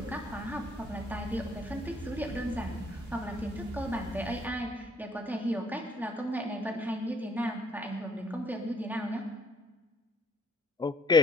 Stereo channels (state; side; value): normal; both; correlation 0.64